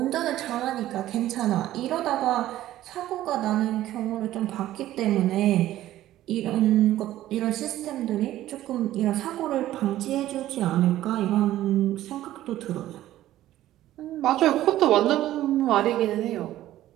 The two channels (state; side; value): quieter; left; 14.0 dB